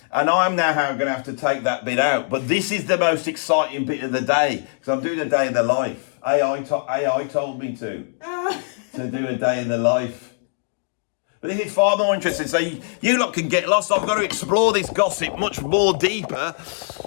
and I'm now going to have to take that bit out. But this is the most exciting bit of the day, because I'm doing a day in the life. AI told me to do a day in the life. But this is far more interesting, so you lot can get lost. I've got to explore this gossip much more deeper.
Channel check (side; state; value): right; silent; digital silence